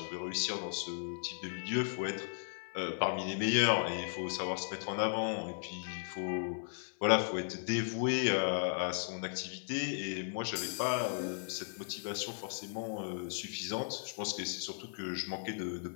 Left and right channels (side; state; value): right; silent; 54 dB below the other